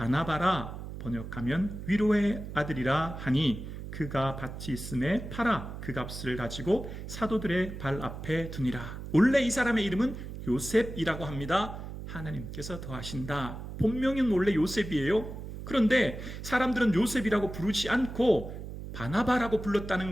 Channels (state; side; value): noise; right; hum, 9 dB below the sound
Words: 번역하면 위로의 아들이라 하니 그가 밭이 있음에 팔아 그 값을 가지고 사도들의 발 앞에 두니라. 원래 이 사람의 이름은 요셉이라고 합니다. 하나님께서 더하신다. 본명은 원래 요셉이에요. 그런데 사람들은 요셉이라고 부르지 않고 바나바라고 불렀다는